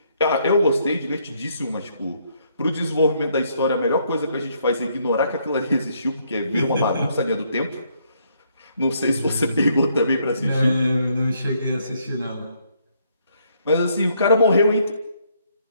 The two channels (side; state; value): both; inverted; correlation -0.70